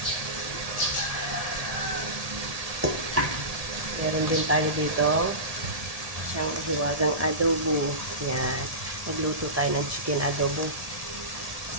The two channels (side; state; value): left; late; 1.7 ms